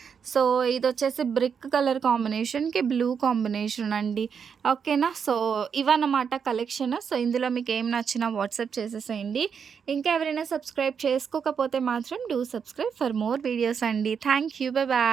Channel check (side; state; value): left; quieter; 6.8 dB